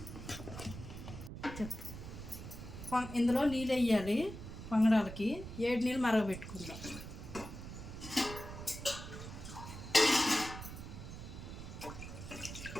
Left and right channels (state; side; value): noise; right; rumble, 10 dB below the sound